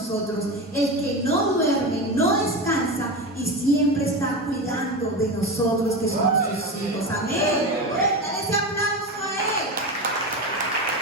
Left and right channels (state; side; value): normal; both; correlation 0.22